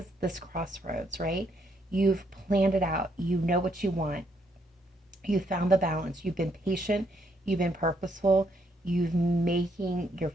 this crossroads, right? You've planned it out. You know what you want. You found the balance. You've been patient. You've been purposeful. You've making your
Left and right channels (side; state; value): both; normal; correlation 0.73